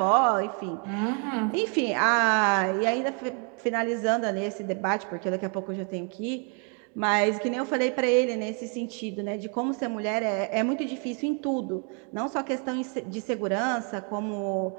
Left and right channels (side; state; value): left; quieter; 39.3 dB